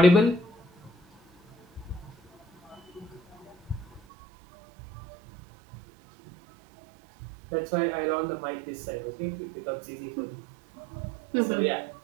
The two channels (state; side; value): drops out; left; at 4.0 s